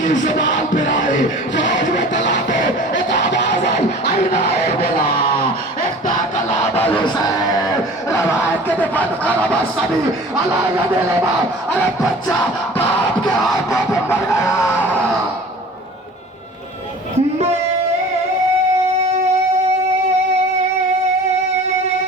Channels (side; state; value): both; normal; correlation 0.43